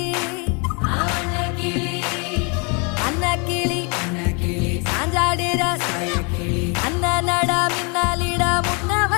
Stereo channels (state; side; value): quieter; right; 33.5 dB